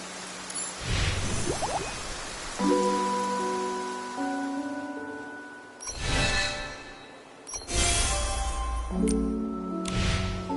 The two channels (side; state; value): both; identical; correlation 1.00